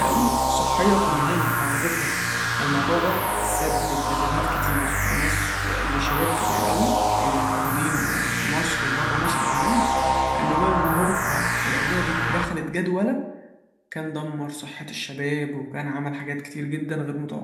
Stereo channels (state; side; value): identical; both; correlation 1.00